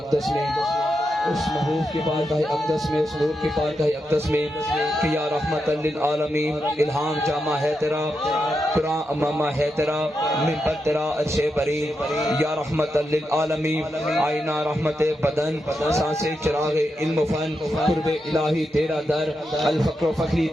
میں، اس محبوب کی بارگاہ اقدس میں، اس نور کی بارگاہ اقدس میں کہ یا رحمت للعالمین، الہام جامع ہے تیرا، قرآن امامہ ہے تیرا، منبر تیرا عرش بری، یا رحمت للعالمین، آئینہ رحمت بدن، سانس چراغ علم و فن، قرب الہی تیرا در، الفقر و فخری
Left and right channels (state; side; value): normal; both; correlation 0.86